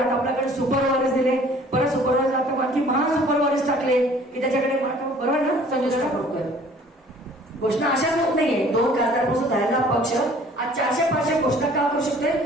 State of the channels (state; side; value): normal; both; correlation 0.53